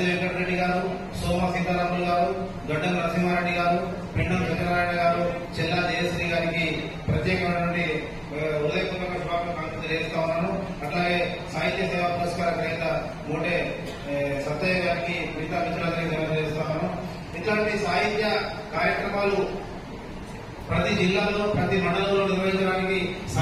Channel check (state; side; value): identical; both; correlation 1.00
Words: వెంకటరెడ్డి గారు, సోమ సీతారాములు గారు, గడ్డం నరసింహారెడ్డి గారు, పెండం సత్యనారాయణ గారు, చెల్లా జయశ్రీ గారికి ప్రత్యేకమైనటువంటి హృదయపూర్వక శుభాకాంక్షలు తెలియజేస్తా ఉన్నాను. అట్లాగే సాహిత్య సేవా పురస్కార గ్రహీత మోటే సత్తయ్య గారికి, మిగతా మిత్రులందరికీ తెలియజేస్తా ఉన్నాను. ఇట్లాంటి సాహిత్య కార్యక్రమాలు ప్రతి జిల్లాలో, ప్రతి మండలంలో నిర్వహించడానికి